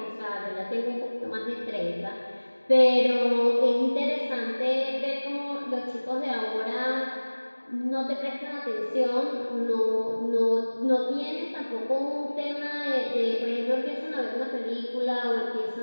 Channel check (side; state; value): both; inverted; correlation -1.00